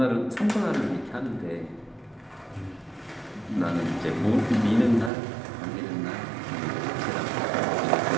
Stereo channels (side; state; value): left; drops out; at 5.1 s